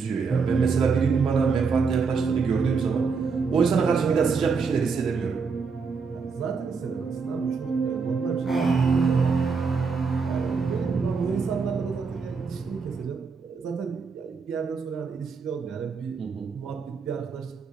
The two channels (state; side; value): quieter; left; 5.2 dB